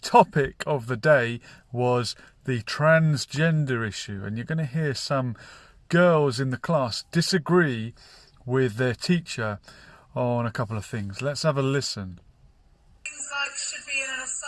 of the day was the transgender issue. And you're going to hear some girls in the class disagree with their teacher on a couple of things. Let's have a listen. Things like should be in an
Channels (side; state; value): both; identical; correlation 1.00